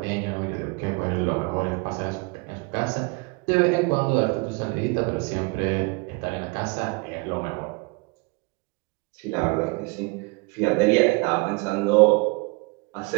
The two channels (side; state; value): left; quieter; 27.8 dB